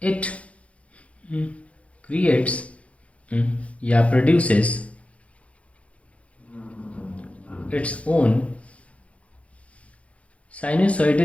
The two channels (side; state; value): right; late; 0.063 ms